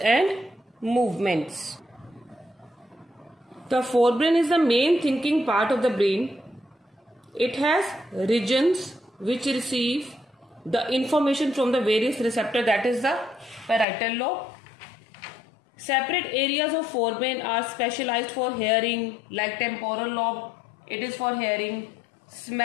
movements. The forebrain is the main thinking part of the brain. It has regions which receive the information from the various receptors, that is the parietal lobe. Separate areas of forebrain are specialized for hearing, like temporal lobe, it is for hearing,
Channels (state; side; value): drops out; right; at 13.9 s